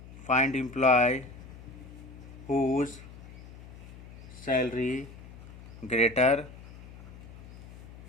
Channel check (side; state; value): left; noise; hum, 16 dB below the sound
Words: employee whose salary greater